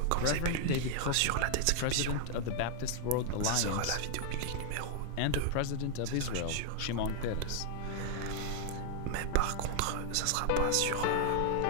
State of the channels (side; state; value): both; different; correlation 0.00